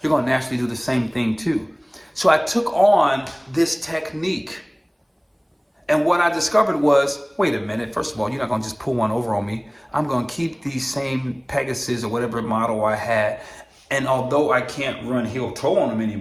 You're going to naturally do the same thing too. So I took on this technique, and what I discovered was, wait a minute, first of all, you're not going to just pull one over on me. I'm going to keep these same Pegasus or whatever model I had, and although I can't run heel toe on them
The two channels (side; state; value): both; identical; correlation 1.00